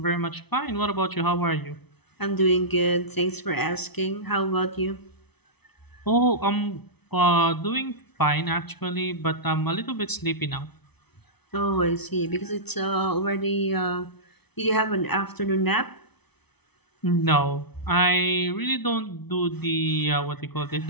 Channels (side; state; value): right; late; 0.99 ms